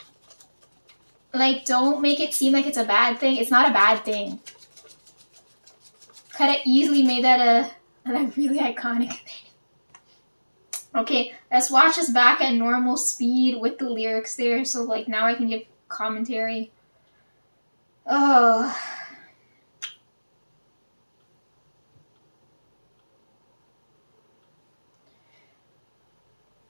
don't make it seem like it's a bad thing. It's not a bad thing. Could have easily made that a really iconic thing. Okay, let's watch this back at normal speed with the lyrics there, so like now I can give commentary. Oh.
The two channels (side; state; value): both; inverted; correlation -1.00